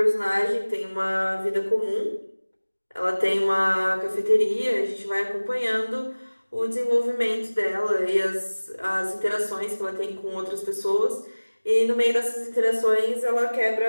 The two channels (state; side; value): inverted; both; correlation -1.00